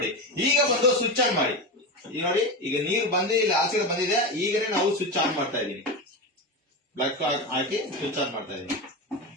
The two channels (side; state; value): both; normal; correlation 0.19